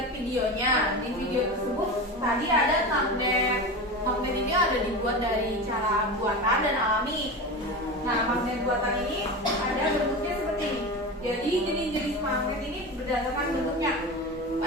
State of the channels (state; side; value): normal; both; correlation 0.26